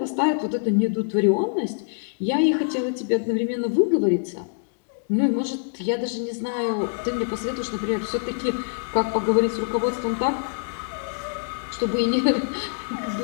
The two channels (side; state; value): right; silent; digital silence